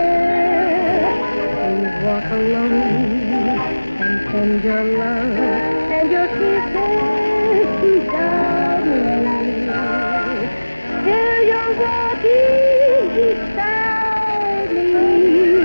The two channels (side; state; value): both; inverted; correlation -1.00